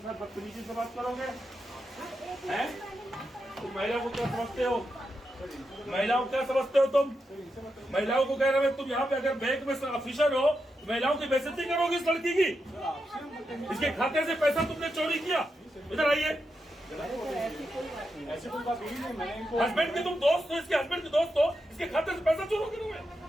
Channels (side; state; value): both; normal; correlation 0.86